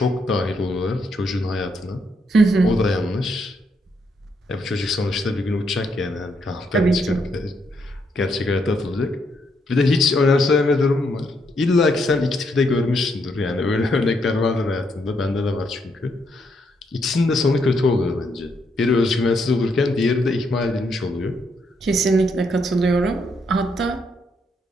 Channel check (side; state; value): both; normal; correlation 0.76